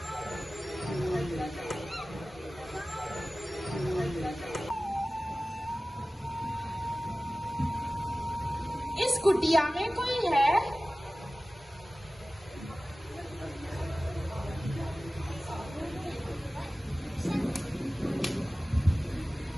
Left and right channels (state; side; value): normal; both; correlation 0.96